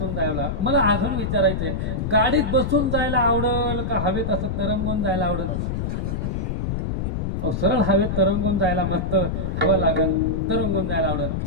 जायला मला अजून विचारायचंय, गाडीत बसून जायला आवडेल का हवेत असं तरंगून जायला आवडेल? सरळ हवेत तरंगून जायला मस्त हवा लागेल, तरंगून जायला आवडेल.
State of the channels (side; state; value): left; noise; rumble, 1 dB below the sound